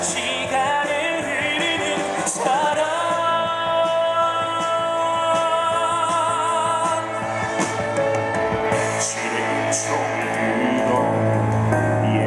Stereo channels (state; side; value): identical; both; correlation 1.00